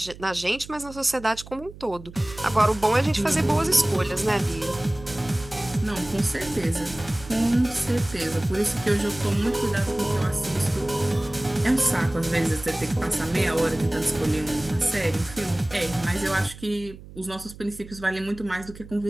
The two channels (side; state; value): right; noise; hum, 17 dB below the sound